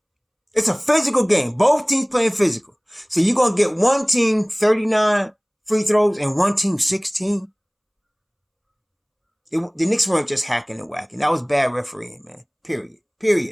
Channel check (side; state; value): both; identical; correlation 1.00